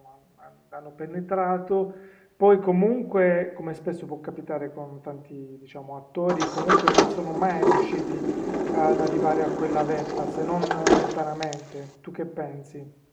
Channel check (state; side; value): identical; both; correlation 1.00